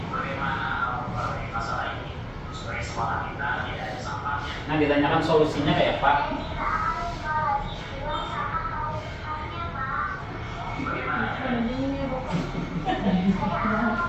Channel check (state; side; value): identical; both; correlation 1.00